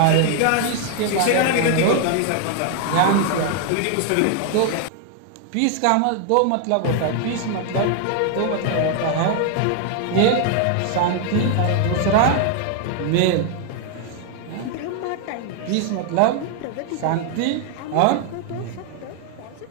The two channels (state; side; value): different; both; correlation 0.00